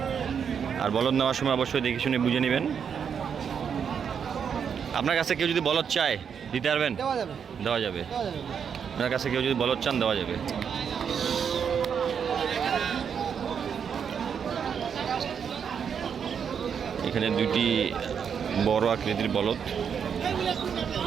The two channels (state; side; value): quieter; left; 7.3 dB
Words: আর বলদ নেওয়ার সময় অবশ্যই দেখে শুনে বুঝে নেবেন। আপনার কাছে কেউ যদি বলদ চায় দিতে পারবেন? দেওয়া যাবে। আপনার কাছে কেউ যদি বলদ চান দেওয়া যাবে। এখানে দুইটি বড় আকৃতির বলদ,